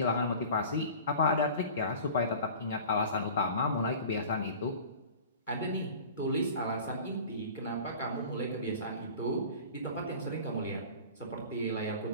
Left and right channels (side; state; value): both; inverted; correlation -0.40